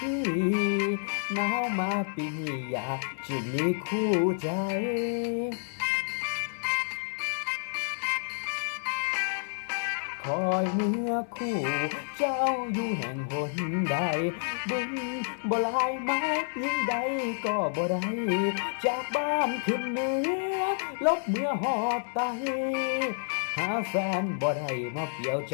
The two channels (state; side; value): silent; right; 58 dB below the other